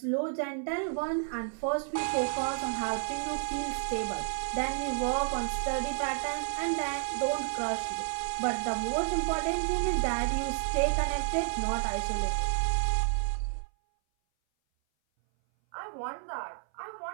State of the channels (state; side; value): silent; left; 57 dB below the other